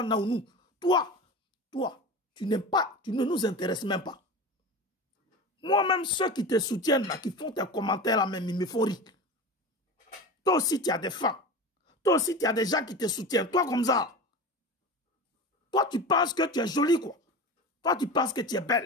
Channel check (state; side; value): normal; both; correlation 0.30